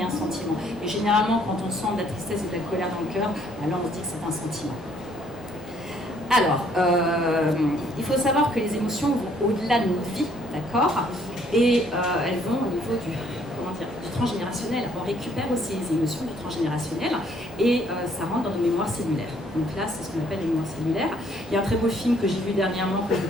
un sentiment. Et généralement quand on sent de la tristesse et de la colère dans le cœur, là on se dit que c'est un sentiment. Alors, il faut savoir que les émotions vont au-delà de notre vie, d'accord? Et elles vont au niveau du transgénérationnel. On récupère aussi les émotions du transgénérationnel et ça rentre dans nos mémoires cellulaires. Donc là, c'est ce qu'on appelle les mémoires cellulaires. Il y a un très beau film que j'ai vu dernièrement, que je vous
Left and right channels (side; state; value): both; normal; correlation 0.64